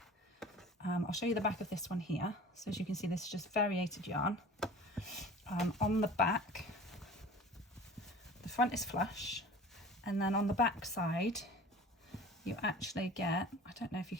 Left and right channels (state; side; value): normal; both; correlation 0.42